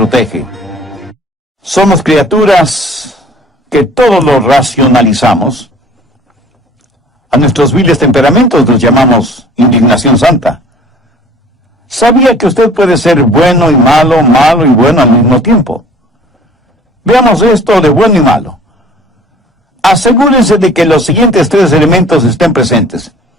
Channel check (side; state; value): both; normal; correlation 0.50